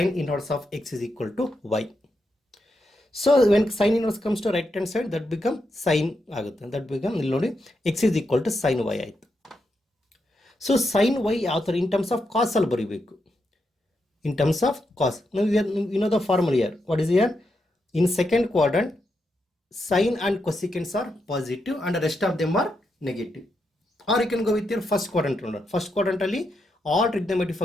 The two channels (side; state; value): both; normal; correlation 0.83